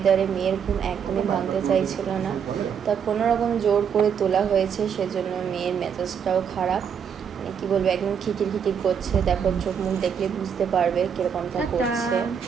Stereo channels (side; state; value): left; quieter; 7.5 dB